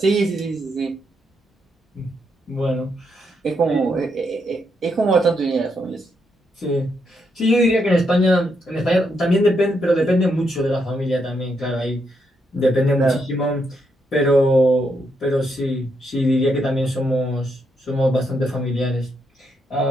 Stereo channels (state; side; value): normal; both; correlation 0.79